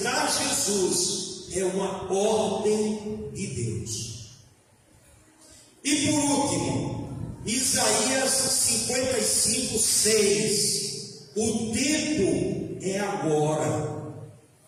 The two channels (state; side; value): identical; both; correlation 1.00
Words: Jesus é uma ordem de Deus. E por último, Isaías 55:6. O tempo é agora.